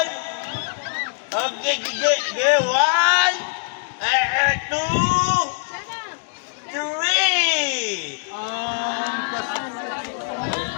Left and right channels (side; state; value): right; silent; 62 dB below the other